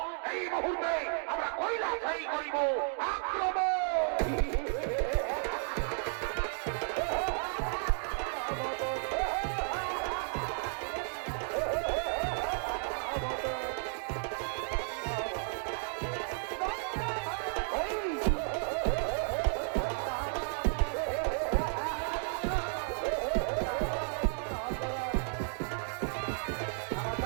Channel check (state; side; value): silent; left; 55 dB below the other